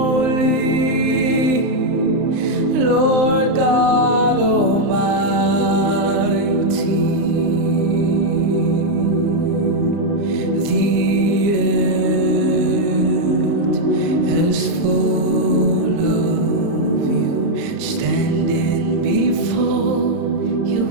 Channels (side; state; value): left; late; 35 ms